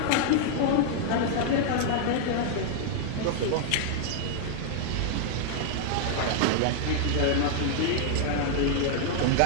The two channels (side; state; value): both; different; correlation 0.00